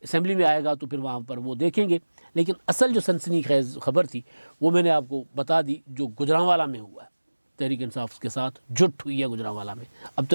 असेंबली में आएगा तो फिर वहाँ पर वो देखेंगे। लेकिन असल जो सनसनीखेज़ खबर थी वो मैंने आपको बता दी, जो गुजरांवाला में हुआ है। तहरीक इंसाफ के साथ जुट हुई है गुजरांवाला में। अब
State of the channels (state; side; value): inverted; both; correlation -1.00